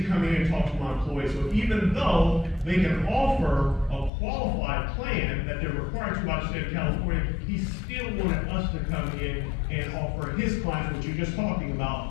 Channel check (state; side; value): drops out; right; at 4.1 s